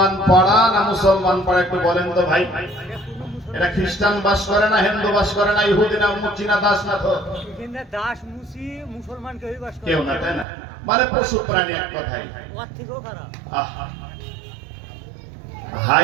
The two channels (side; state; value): left; drops out; at 10.5 s